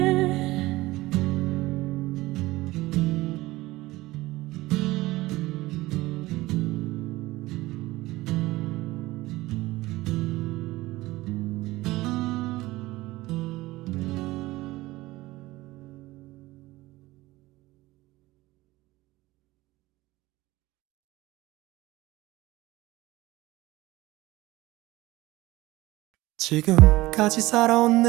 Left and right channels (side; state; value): left; quieter; 18.8 dB